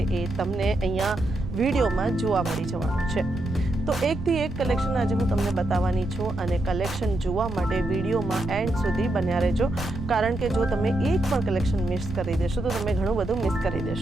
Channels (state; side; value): noise; right; rumble, 8 dB below the sound